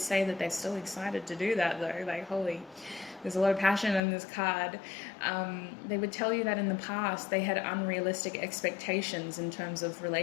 say that they're still excited to do that though. Like, holy, there's a lot of passion in this card. They would tell you that in the past they had unrealistic expectations in terms of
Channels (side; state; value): right; drops out; at 4.0 s